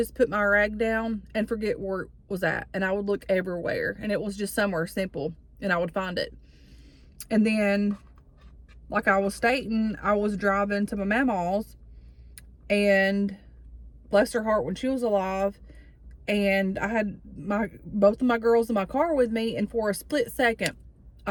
put my rag down, and forget where it was at. And I would look everywhere. And it was just somewhere simple. And I would find it. And then, like I was stating, I was driving to my mama's. And bless her heart, when she was alive, and I had both of my girls in my car with me. And for a split second,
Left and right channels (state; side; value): identical; both; correlation 1.00